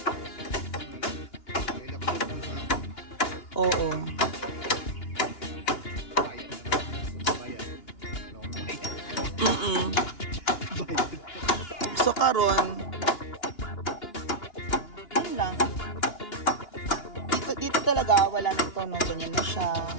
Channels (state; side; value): late; right; 2.9 ms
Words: Oo. So, karon yun lang. Dito talaga, wala na ito, no? Ganyan na siya.